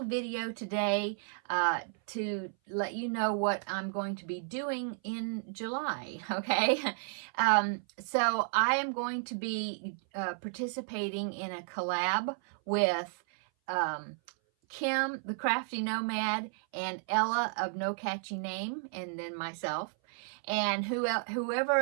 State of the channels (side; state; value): left; silent; 56 dB below the other